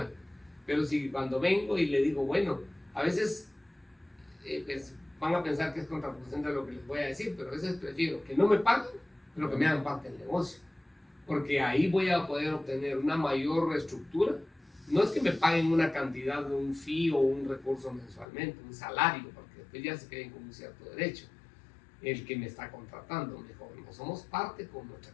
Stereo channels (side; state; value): right; drops out; at 18.2 s